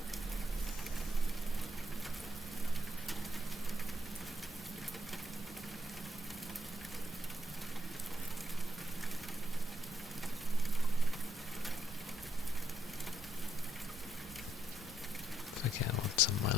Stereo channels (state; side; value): normal; both; correlation 0.75